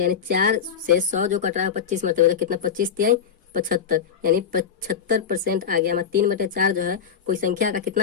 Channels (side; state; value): right; quieter; 7.3 dB